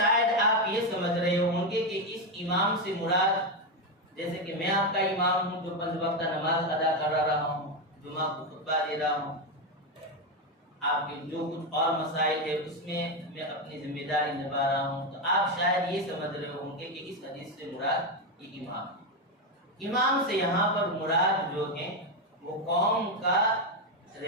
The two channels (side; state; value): both; normal; correlation 0.08